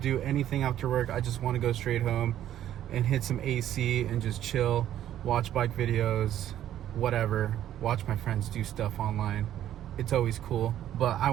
anything after work. I just want to go straight home and hit some AC and just chill, watch bike videos, whatever, watch my friends do stuff online. It's always cool, but I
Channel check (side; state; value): left; quieter; 11.7 dB